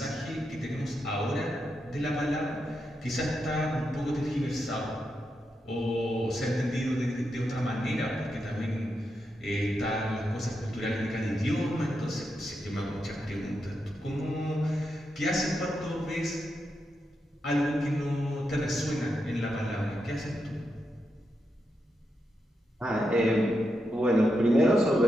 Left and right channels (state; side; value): normal; both; correlation 0.85